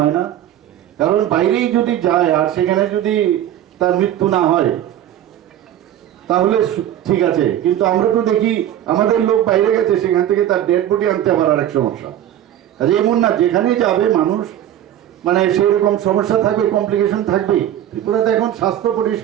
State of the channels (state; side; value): quieter; left; 11.6 dB